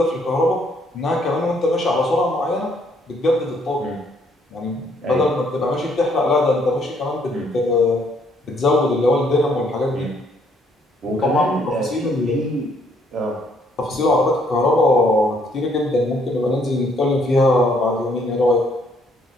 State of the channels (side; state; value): both; normal; correlation 0.68